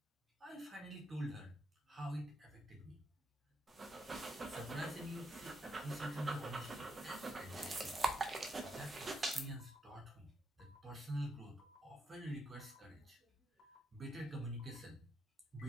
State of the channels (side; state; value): both; normal; correlation 0.80